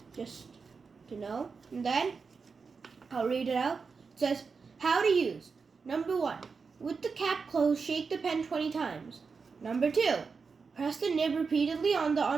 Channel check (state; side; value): quieter; left; 5.0 dB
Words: just to know. And then I'll read it out. It says, how to use. Number 1, with the cap closed, shake the pen 20 times. Number 2, press the nib repeatedly on the